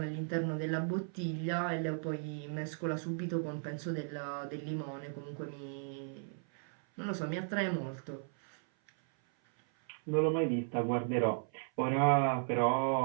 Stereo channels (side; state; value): left; silent; 54 dB below the other